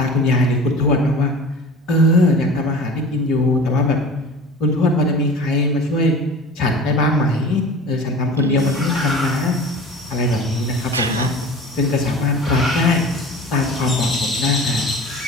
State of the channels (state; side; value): normal; both; correlation 0.38